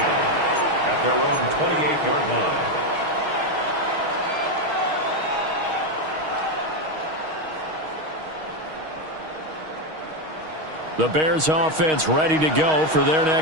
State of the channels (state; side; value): late; left; 6.4 ms